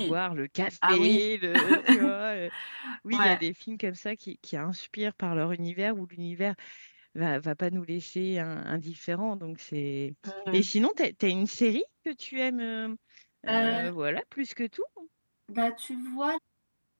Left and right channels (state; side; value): inverted; both; correlation -1.00